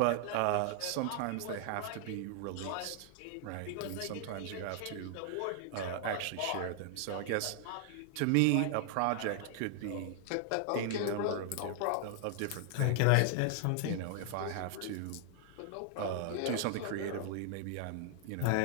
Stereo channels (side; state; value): both; different; correlation 0.00